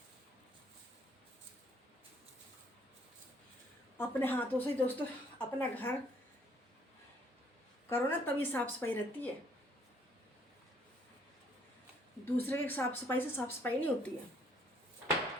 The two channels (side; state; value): both; normal; correlation 0.64